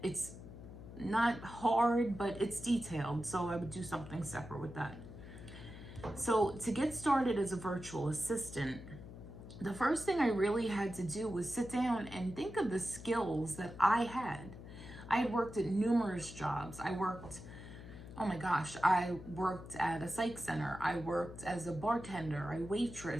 It's not hard, but it's detailed, so I would do something separate with that. So to get started as a virtual assistant, the first thing I really had to do was sit down and think of the skills that I had. I had worked at numerous jobs. I worked at a psych center. I worked as a bartender, I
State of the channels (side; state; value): left; noise; hum, 14 dB below the sound